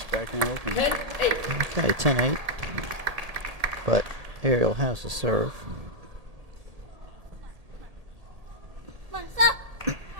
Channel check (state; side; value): late; left; 1.8 ms